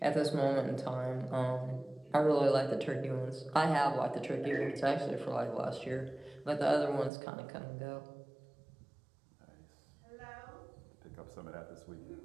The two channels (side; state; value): left; drops out; at 7.1 s